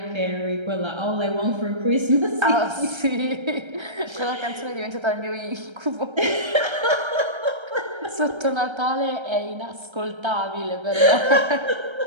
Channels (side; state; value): left; late; 1.3 ms